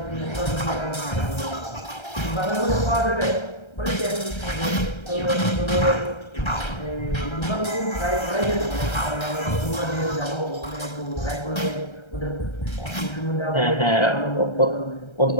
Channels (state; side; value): late; right; 1.3 ms